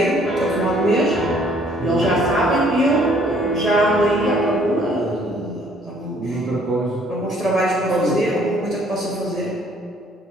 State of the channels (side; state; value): both; normal; correlation 0.61